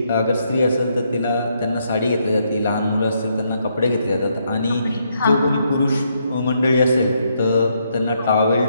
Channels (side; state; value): both; inverted; correlation -0.76